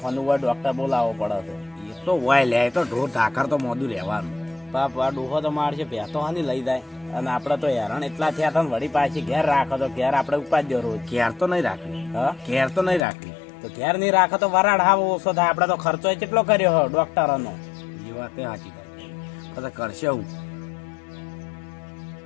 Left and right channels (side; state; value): right; drops out; at 13.0 s